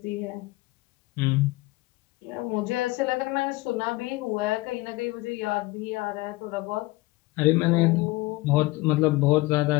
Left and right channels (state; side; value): quieter; right; 20.4 dB